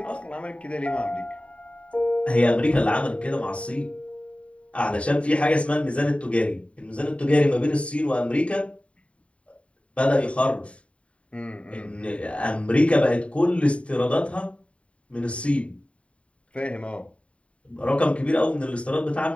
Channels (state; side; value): late; right; 0.062 ms